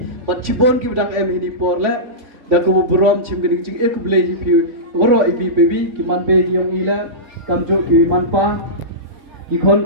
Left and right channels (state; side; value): late; left; 3.5 ms